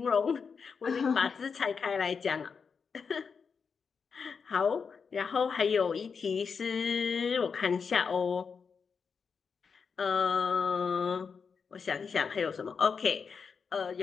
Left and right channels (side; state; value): right; quieter; 5.8 dB